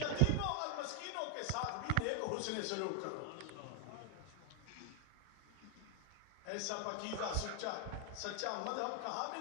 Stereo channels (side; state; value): both; different; correlation 0.00